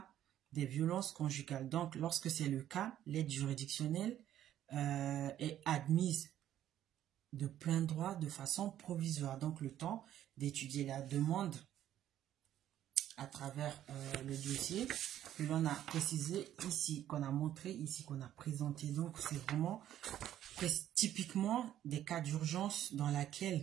des violences conjugales. Donc, lorsque c'est le cas, l'aide juridictionnelle est admise de plein droit de façon provisoire. Donc, le temps d'étudier la demande à travers le dossier que l'on a précisé ici, qu'on a montré ici, qu'on a présenté. Donc, c'est vraiment typiquement des cas d'urgence dans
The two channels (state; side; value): quieter; left; 11.8 dB